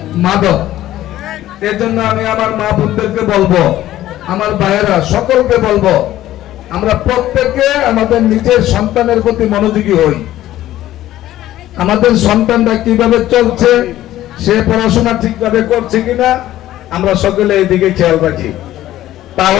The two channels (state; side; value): quieter; right; 14.0 dB